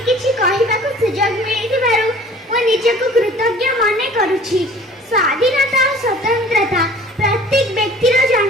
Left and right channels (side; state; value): both; normal; correlation 0.48